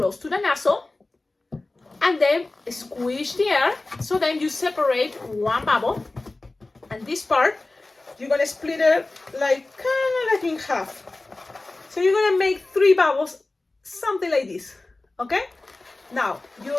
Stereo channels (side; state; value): right; quieter; 3.1 dB